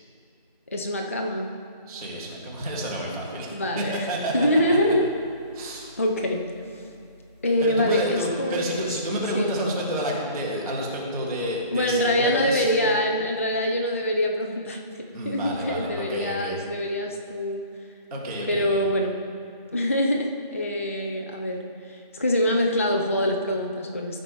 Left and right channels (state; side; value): inverted; both; correlation -0.48